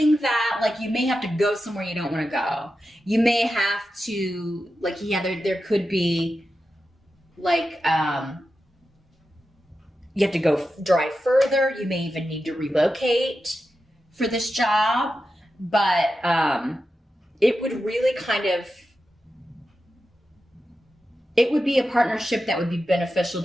that, like, you may have to go somewhere you don't want to go. You may have to, like, there could be, like, you have to go drive further. You may even need to relocate for this job. But it would really it would be a partnership that would be beneficial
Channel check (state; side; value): normal; both; correlation 0.91